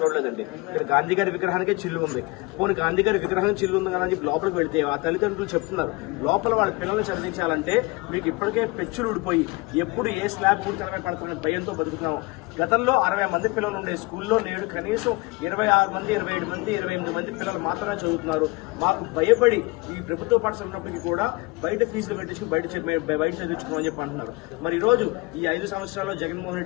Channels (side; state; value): right; quieter; 24.5 dB